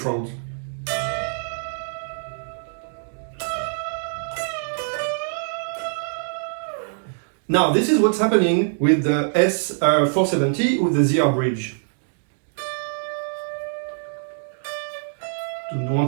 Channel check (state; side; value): silent; left; digital silence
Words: Now, this is what's happening with the S470 with the ZR bridge. You